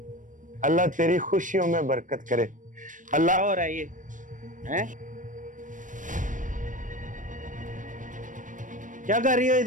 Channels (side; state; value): left; late; 0.38 ms